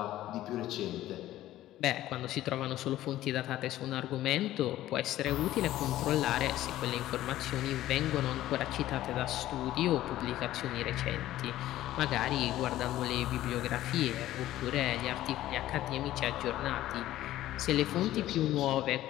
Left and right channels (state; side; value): quieter; right; 14.3 dB